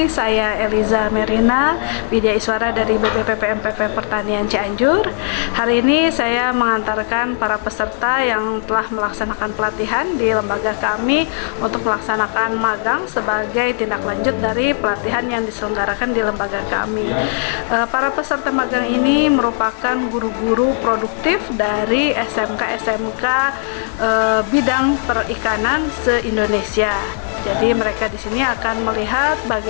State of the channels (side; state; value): right; silent; 58 dB below the other